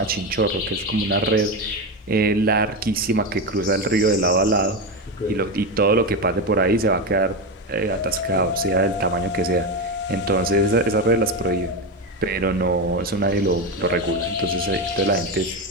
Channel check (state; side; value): normal; both; correlation 0.14